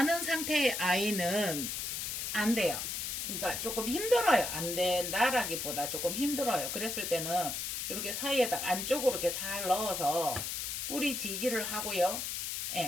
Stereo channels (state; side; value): noise; left; hiss, 3 dB below the sound